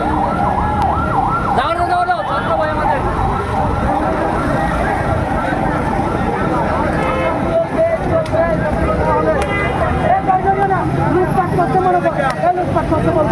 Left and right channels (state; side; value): identical; both; correlation 1.00